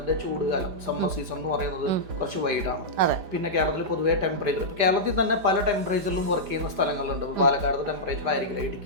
ചൂടുകാലം സമ്മർ സീസൺ എന്ന് പറയുന്നത് കുറച്ച് വൈഡാണ്. പിന്നെ കേരളത്തിൽ പൊതുവേ ടെമ്പറേച്ചർ, കേരളത്തിൽ തന്നെ പല ടെമ്പറേച്ചറിലും വർക്ക് ചെയ്യുന്ന സ്ഥലങ്ങളുണ്ട്. പാലക്കാട് ടെമ്പറേച്ചർ ആയിരിക്കില്ല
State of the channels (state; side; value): late; left; 5.0 ms